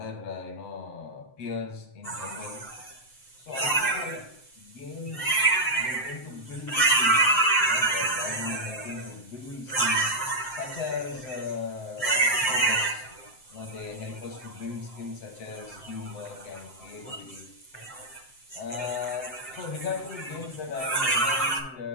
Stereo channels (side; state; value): right; late; 7.7 ms